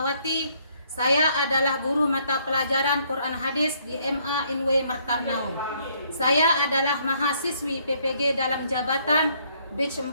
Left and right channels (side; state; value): both; inverted; correlation -0.67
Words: Saya adalah guru mata pelajaran Quran Hadis di MA INW Martarnau. Saya adalah mahasiswi PPG dalam jabatan Batch